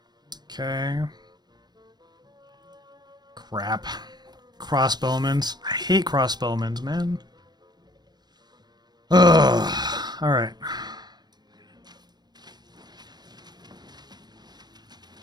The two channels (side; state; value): left; late; 0.20 ms